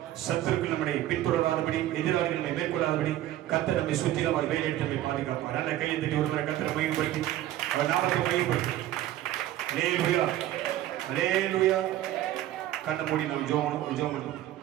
சத்துருக்கள் நம்மை பின்தொடராதபடி, எதிராளிகள் நம்மை மேற்கொள்ளாதபடி கர்த்தர் நம்மை சுற்றிலும் அவர் வேலையிட்டு நம்மை பாதுகாப்பார். நல்ல கையை தட்டி ஒருவரை கர்த்தரை மையப்படுத்தி அவர் நாமத்தை மையப்படுத்தி. அல்லேலூயா, அல்லேலூயா. கண்ணை மூடி நாம் ஜெபம் பண்ணுவோம்.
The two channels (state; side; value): quieter; left; 13.8 dB